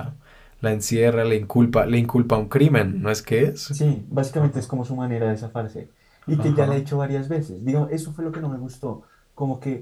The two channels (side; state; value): both; identical; correlation 1.00